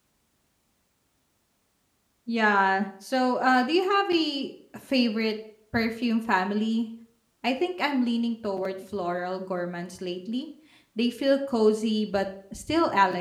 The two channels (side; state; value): both; identical; correlation 1.00